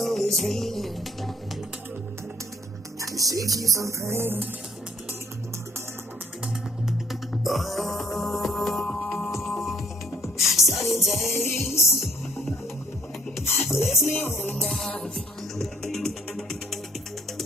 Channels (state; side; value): normal; both; correlation 0.61